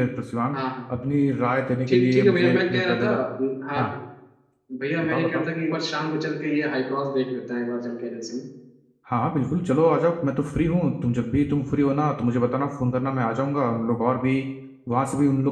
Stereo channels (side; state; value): both; identical; correlation 1.00